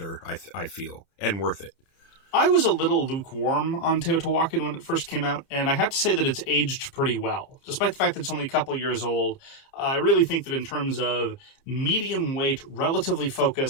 I feel, and worth it. I was a little lukewarm on Teotihuacan when it first came out, and I have to say that it's aged pretty well. Despite the fact that it's only a couple of years old, I really think that in terms of medium weight, relatively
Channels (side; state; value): right; late; 30 ms